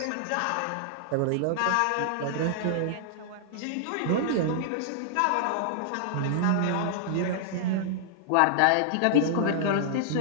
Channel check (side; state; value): both; different; correlation -0.01